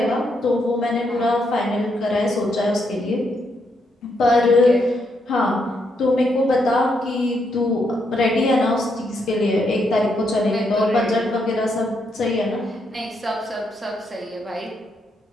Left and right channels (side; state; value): both; normal; correlation 0.78